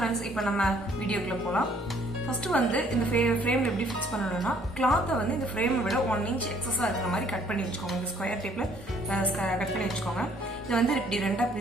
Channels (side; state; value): both; normal; correlation 0.62